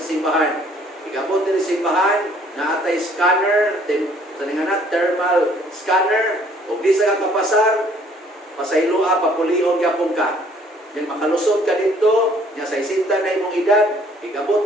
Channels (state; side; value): normal; both; correlation 0.60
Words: simbahan. Igabot din sa simbahan, na atay scanner, thermal scanner, o di sa kapasar, pasaylua, papulion yapon ka. Yung makalusot ka dito, niya sa isinta na imong edad, igabot